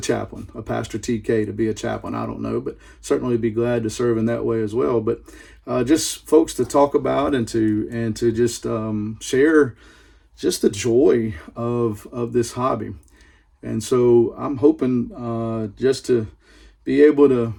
chaplain, a Pastor TK to be a chaplain. I don't know, but certainly be glad to serve in that way as well. But just folks to talk about and to just share just the joy of this hobby. And so I'm hoping just to be able to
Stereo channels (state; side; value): identical; both; correlation 1.00